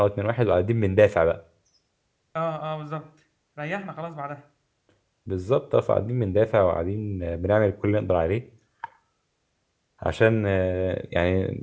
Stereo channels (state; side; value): identical; both; correlation 1.00